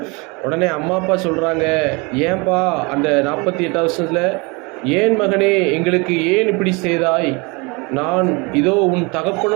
உடனே அம்மா அப்பா சொல்கிறாங்க, ஏன்பா அந்த 48 வருஷத்தில் ஏன் மகனே எங்களுக்கு ஏன் இப்படி செய்தாய்? நான் இதோ உன்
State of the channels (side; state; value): left; quieter; 28.3 dB